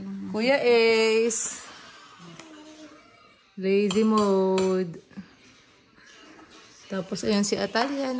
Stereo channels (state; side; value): identical; both; correlation 1.00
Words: lang. Kuya Ace. Lazy mode. Tapos ayun si Atalia.